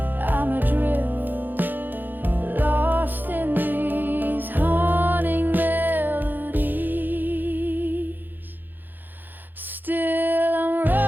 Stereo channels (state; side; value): late; left; 0.089 ms